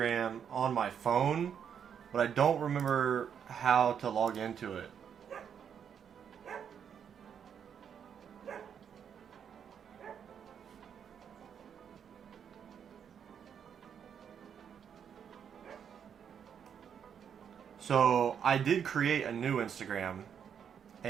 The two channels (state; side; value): quieter; left; 7.9 dB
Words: on my phone, but I don't remember how to log into it. So I did create a new Instagram,